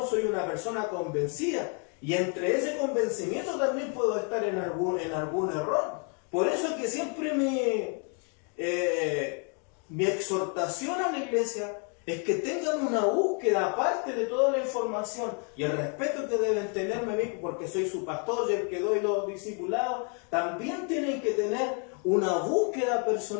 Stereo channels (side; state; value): right; quieter; 39.1 dB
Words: soy una persona convencida. Y entre ese convencimiento también puedo estar en algún error. Por eso es que siempre mi exhortación a la iglesia es que tengan una búsqueda aparte de toda la información y el respeto que deben tenerme a mí porque soy su pastor y el que doy los discipulados. También tienen que tener una búsqueda